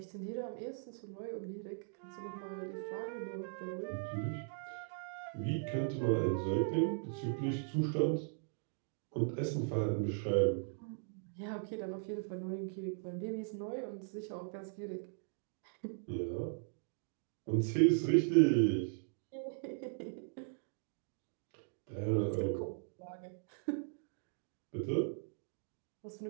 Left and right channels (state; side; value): silent; left; digital silence